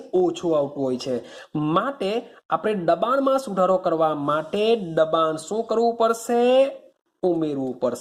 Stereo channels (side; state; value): both; identical; correlation 1.00